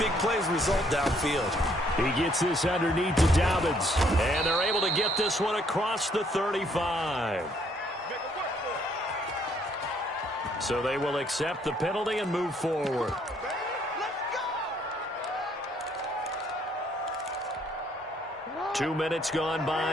plays result downfield. He gets this underneath to Dobbins, and they're able to get this one across the 35. So they will accept the penalty and move forward. 2 minutes gone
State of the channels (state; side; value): normal; both; correlation 0.67